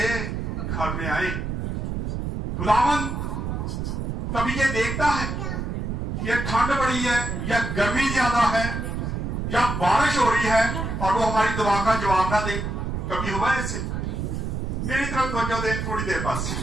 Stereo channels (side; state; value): right; noise; rumble, 3 dB below the sound